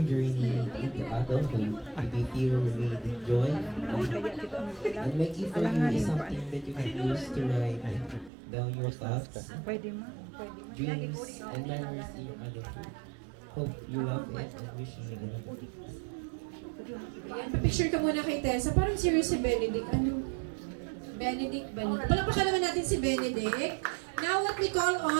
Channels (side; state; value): left; drops out; at 8.3 s